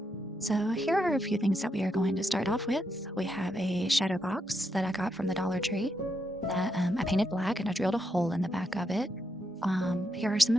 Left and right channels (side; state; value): both; normal; correlation 0.81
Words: So, here are a few things that we are going to start off with. We have a shadow box that I got from the Dollar Tree that I painted black and I drilled a hole in the back of it. Here are some